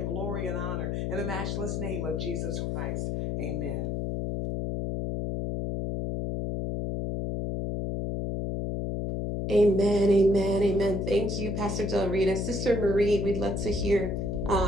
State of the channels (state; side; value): noise; left; hum, 2 dB below the sound